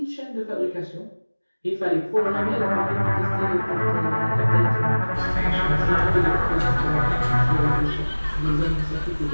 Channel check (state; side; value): inverted; both; correlation -1.00